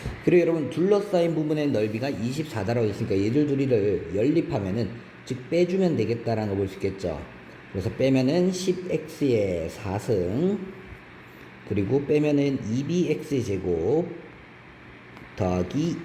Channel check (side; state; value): both; identical; correlation 1.00